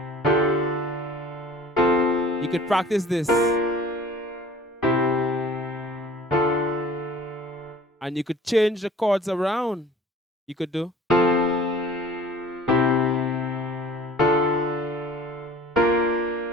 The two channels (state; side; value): normal; both; correlation 0.48